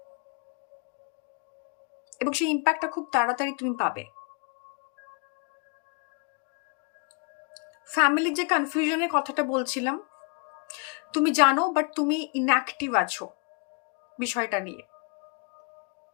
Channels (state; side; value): quieter; right; 34.0 dB